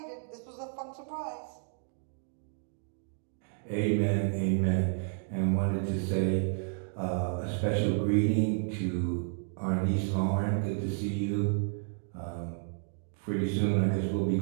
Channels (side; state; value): left; silent; 57 dB below the other